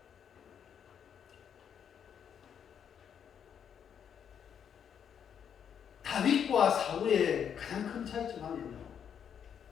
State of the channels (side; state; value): right; quieter; 8.2 dB